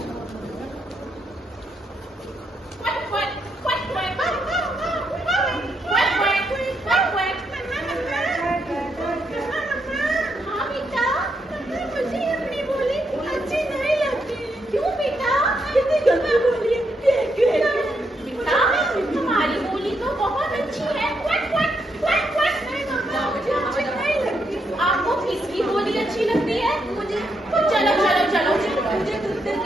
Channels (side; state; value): both; normal; correlation 0.79